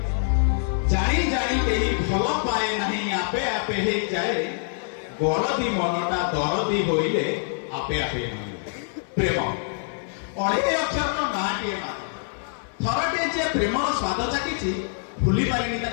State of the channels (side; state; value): right; silent; 57 dB below the other